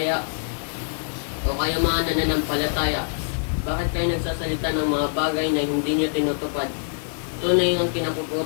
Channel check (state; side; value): silent; right; digital silence